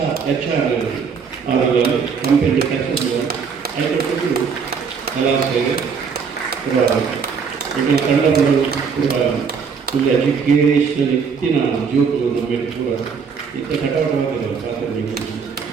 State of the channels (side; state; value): left; quieter; 6.0 dB